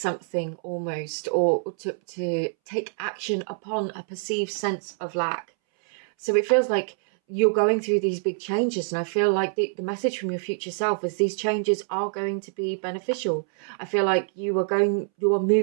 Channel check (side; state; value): left; silent; 61 dB below the other